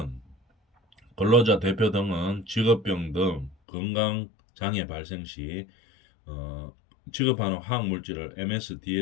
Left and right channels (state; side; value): drops out; right; at 3.6 s